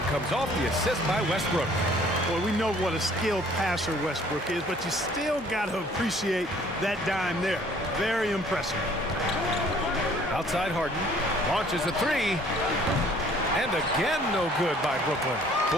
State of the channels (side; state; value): both; normal; correlation 0.56